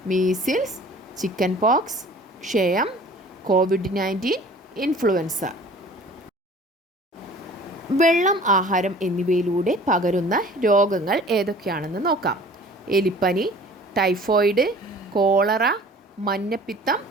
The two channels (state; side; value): normal; both; correlation 0.48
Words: മീസിൽസ്, ചിക്കൻ പോക്സ്, ക്ഷയം, COVID-19, ഇൻഫ്ലുവൻസ. വെള്ളം, ആഹാരം എന്നിവയിലൂടെ പകരുന്ന രോഗങ്ങൾ ഏതൊക്കെയാണെന്ന് നോക്കാം. എലിപ്പനി, ടൈഫോയിഡ്, കോളറ, മഞ്ഞപ്പിത്തം,